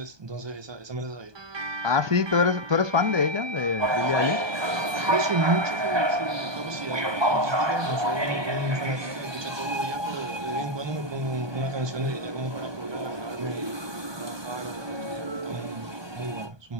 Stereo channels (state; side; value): late; left; 1.2 ms